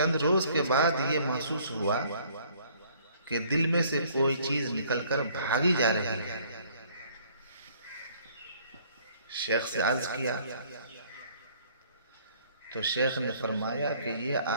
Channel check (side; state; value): both; inverted; correlation -0.59